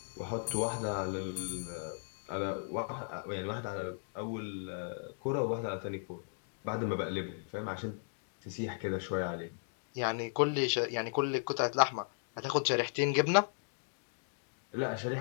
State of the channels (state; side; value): silent; right; digital silence